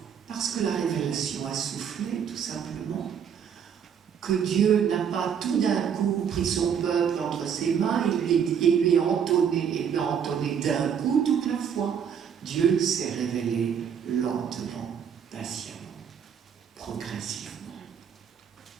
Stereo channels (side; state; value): left; quieter; 7.8 dB